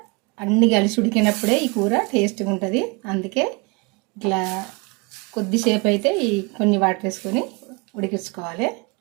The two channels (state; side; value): quieter; left; 29.2 dB